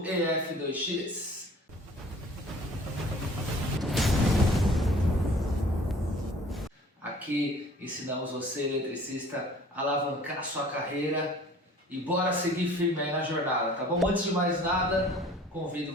EF2X. Aqui ensinamos você, eletricista, a alavancar sua carreira e bora seguir firme aí na jornada, tá bom? Antes de mais nada, convido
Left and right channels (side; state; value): both; normal; correlation 0.50